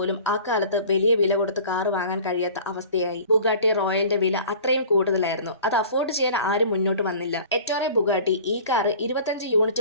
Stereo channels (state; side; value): inverted; both; correlation -0.44